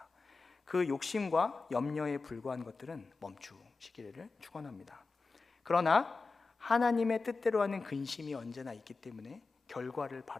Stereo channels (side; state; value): right; quieter; 4.1 dB